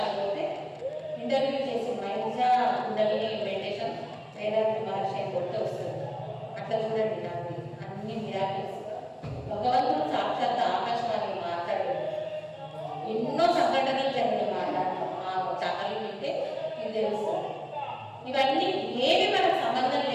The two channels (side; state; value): both; identical; correlation 1.00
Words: పోతే ఇంటర్వ్యూ చేసి మైజా కుండలిని మెడిటేషన్ వేదాంతి మహర్షి కొట్టే వస్తుంది. అట్లా చూడండి నాకు అన్ని మిరాకిల్స్. భగవంతుడు సాక్షాత్ ఆకాశవాణి మాట్లాడాడు. ఎన్నో సంఘటనలు జరిగిన మాట్లాడతాం మా ఛానల్ వింటే మీకు తెలుస్తుంది. ఇవన్నీ ఏమి మనకు సంబంధం